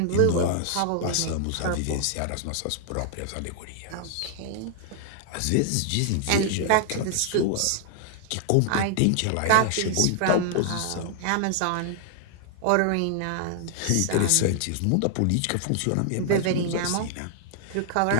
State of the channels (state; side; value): different; both; correlation 0.00